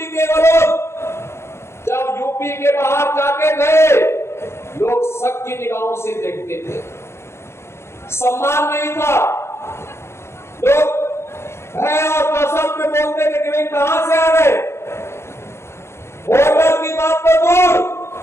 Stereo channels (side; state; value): right; late; 0.13 ms